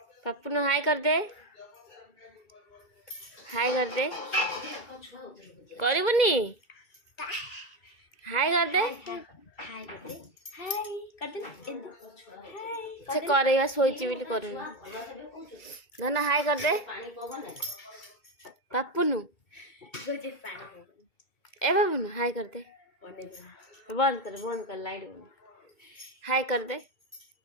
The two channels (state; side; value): late; right; 2.3 ms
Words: पप्पू हाय कर दे हाय कर दे करबनी हाय कर दे हाय कर दे से करैबा सोइची बिली करूना धन्ना हाय कर दे पप्पू गोजे पानी ए बाबू हाय कर दे बंद कर लाइट बंद हाय कर दे